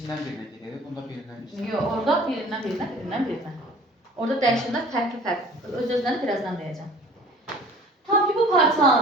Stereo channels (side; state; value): both; normal; correlation 0.48